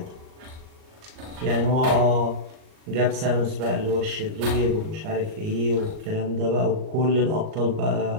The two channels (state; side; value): late; left; 38 ms